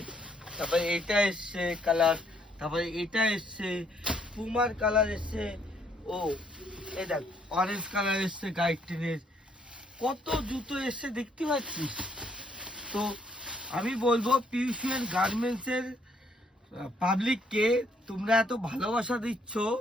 তারপরে এটা এসছে কালার, তারপরে এটা এসছে, পুমার কালার এসছে। ও এই দেখ অরেঞ্জ কালার এসছে গাইড ট্রেনের। কত জুতো এসছে দেখতে পাচ্ছিস তো। আমি বলবো পিউশিয়ান গার্মেন্টসের পাবলিককে, তোমরা এত ভালোবাসা দিচ্ছ,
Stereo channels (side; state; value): both; normal; correlation 0.69